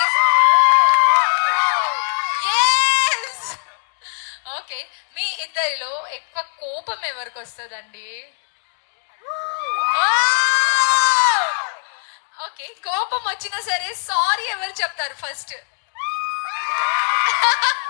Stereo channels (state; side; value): silent; right; digital silence